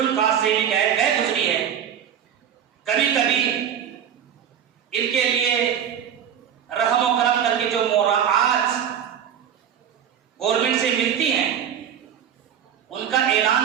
caste से भी गए गुजरी है। कभी कभी इनके लिए रहम और करम करके जो मोराआत गवर्नमेंट से मिलती हैं उनका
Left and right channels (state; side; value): quieter; left; 9.0 dB